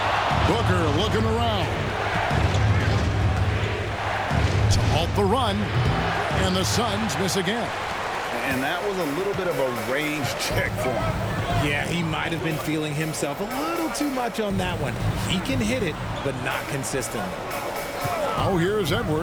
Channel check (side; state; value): both; identical; correlation 1.00